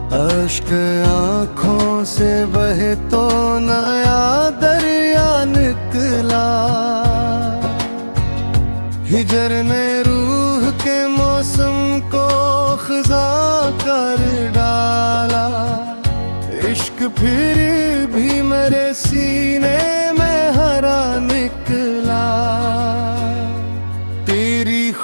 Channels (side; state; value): both; inverted; correlation -1.00